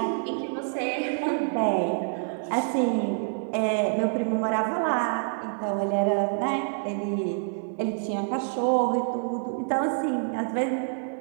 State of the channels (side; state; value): left; silent; digital silence